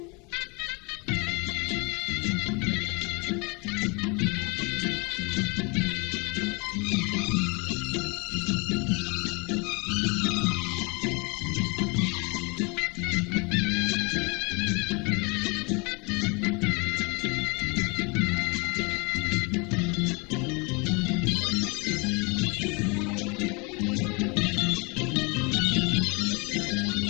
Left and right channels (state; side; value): quieter; right; 30.0 dB